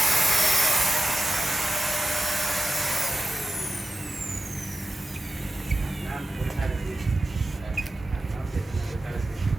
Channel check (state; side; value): normal; both; correlation 0.89